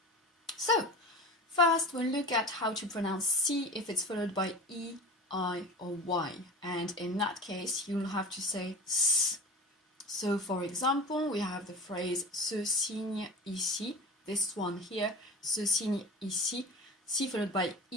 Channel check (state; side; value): normal; both; correlation 0.34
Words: So, first we'll look at how to pronounce C if it's followed by E, I or Y. And in that case you'll have to say S. So for example, we have the phrase ce signe ici, this one here, ce signe ici, C followed by